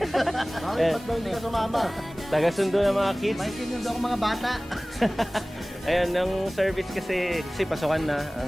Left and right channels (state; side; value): normal; both; correlation 0.98